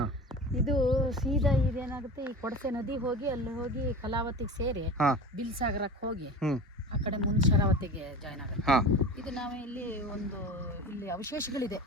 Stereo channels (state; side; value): normal; both; correlation 0.34